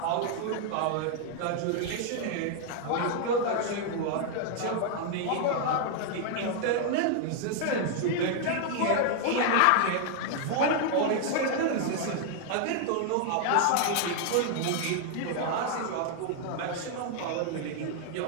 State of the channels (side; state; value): both; different; correlation 0.00